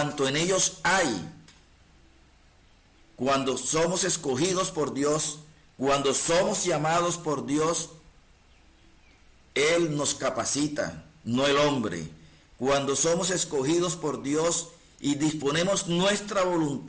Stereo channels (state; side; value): identical; both; correlation 1.00